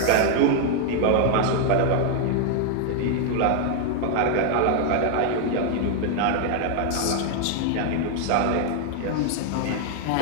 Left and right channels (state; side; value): different; both; correlation 0.00